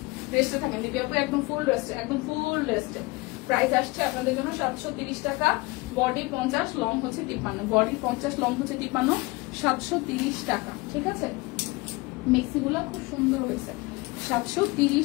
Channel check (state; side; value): quieter; right; 23.9 dB